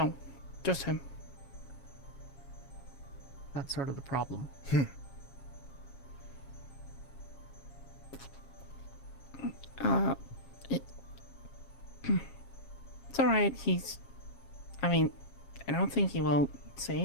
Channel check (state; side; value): late; right; 7.3 ms